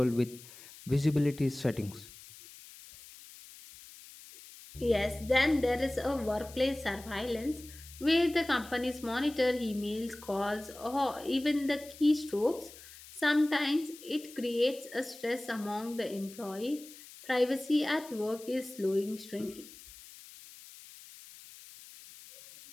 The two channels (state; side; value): noise; left; hiss, 18 dB below the sound